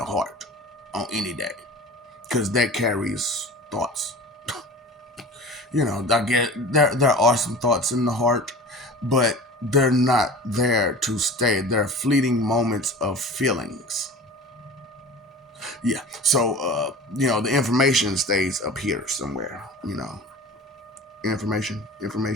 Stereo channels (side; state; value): both; normal; correlation 0.38